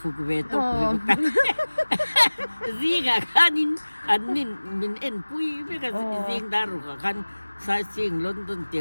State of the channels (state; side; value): inverted; both; correlation -1.00